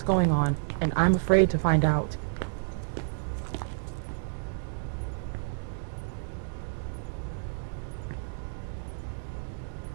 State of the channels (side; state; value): left; silent; digital silence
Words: going on, and I'm afraid to find out.